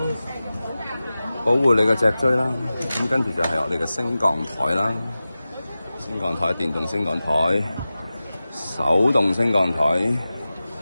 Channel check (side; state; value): both; inverted; correlation -0.95